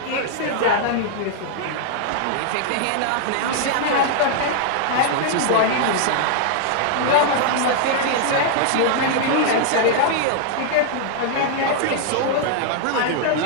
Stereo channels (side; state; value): both; different; correlation -0.01